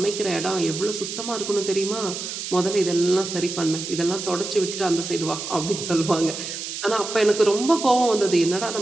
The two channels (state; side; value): noise; right; hiss, 7 dB below the sound